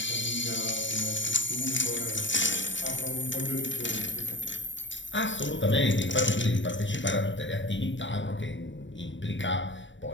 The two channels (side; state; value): right; late; 0.54 ms